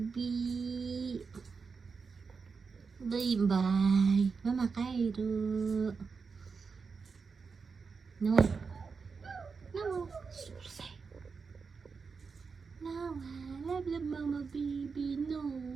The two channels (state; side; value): quieter; left; 5.1 dB